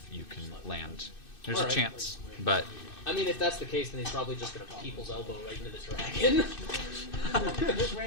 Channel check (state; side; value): late; right; 2.6 ms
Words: you can land. There's All a right. chance, but I mean, if that's the case, then he's probably just gonna people's elbow right into the dragon.